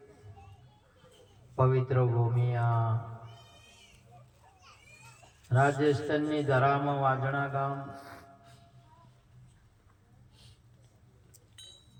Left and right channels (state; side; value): identical; both; correlation 1.00